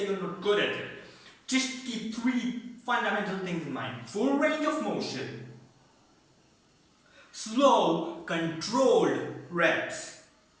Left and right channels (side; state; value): both; identical; correlation 1.00